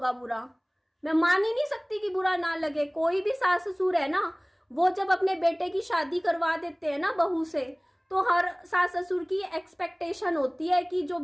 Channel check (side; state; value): both; identical; correlation 1.00